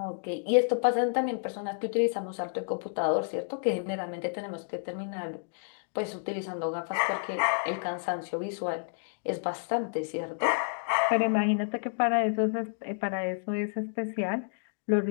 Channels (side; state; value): right; silent; digital silence